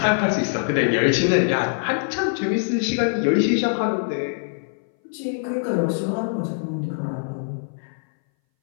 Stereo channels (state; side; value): silent; right; 61 dB below the other